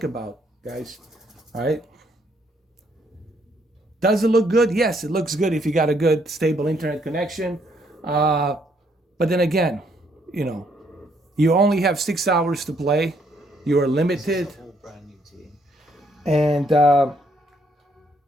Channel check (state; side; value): normal; both; correlation 0.70